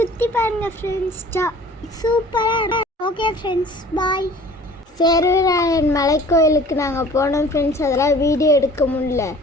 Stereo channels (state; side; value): normal; both; correlation 0.48